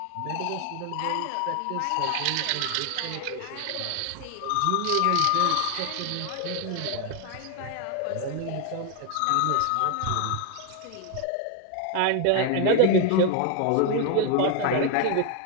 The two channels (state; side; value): different; both; correlation 0.00